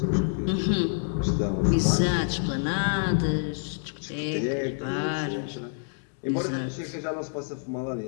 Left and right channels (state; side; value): silent; right; 57 dB below the other